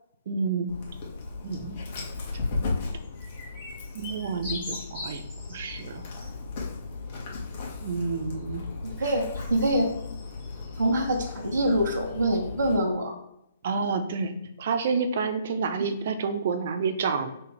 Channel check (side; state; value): both; inverted; correlation -0.67